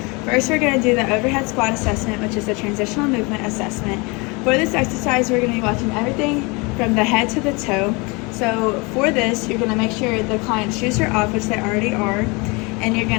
First, we're going to do the overhead squat assessment, which is the transitional movement assessment. For this exercise, we're going to be watching everything from the head to the toe. So for this, you're going to make sure the client's shoes are off, which they already are, and you're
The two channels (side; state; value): right; quieter; 27.8 dB